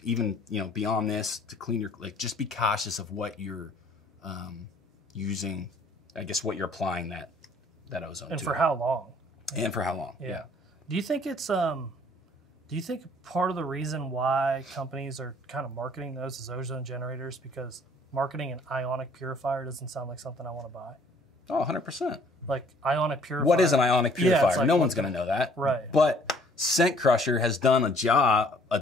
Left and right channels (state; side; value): normal; both; correlation 0.58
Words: even, you know, beyond this to clean your, like, just be cautious of what you're using. I guess what you're applying that ozone to. And for how long? And for how long? Yeah. Do you think it's do you think part of the reason why companies are kind of marketing those as ozone generators because marketing an ionic purifier doesn't sound like something I want to buy? Oh, 100%. Like ionic purifier. What is an ionic purifier? Like, no one's going to know that. Right. But Scent Crusher has done a job,